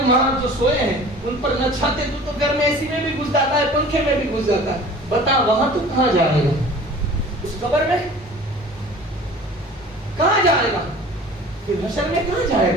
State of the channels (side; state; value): both; normal; correlation 0.44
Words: وہاں جو سوئے ہیں ان پر نہ چھاتے، تو گھر میں اسی میں بھی گھس جاتا ہے، پنکھے میں بھی گھس جاتا ہے، بتا وہاں تو کہاں جائے گا؟ اس قبر میں کہاں جائے گا؟ پھر حشر میں کہاں جائے